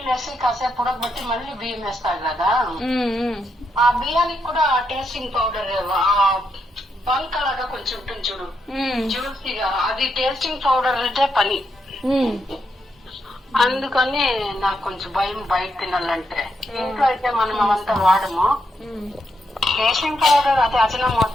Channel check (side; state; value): both; normal; correlation 0.81